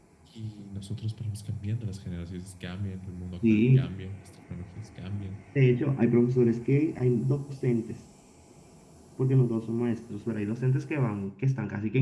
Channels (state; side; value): identical; both; correlation 1.00